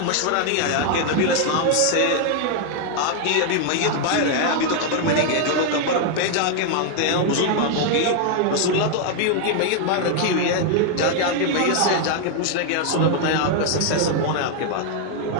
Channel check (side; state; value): both; different; correlation 0.00